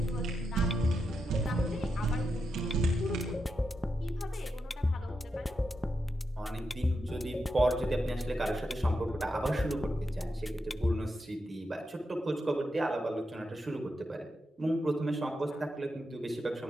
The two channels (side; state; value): both; normal; correlation 0.86